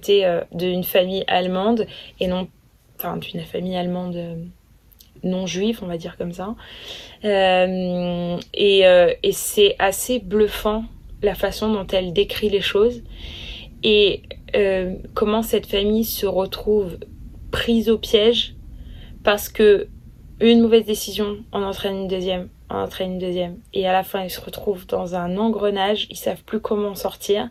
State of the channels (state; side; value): identical; both; correlation 1.00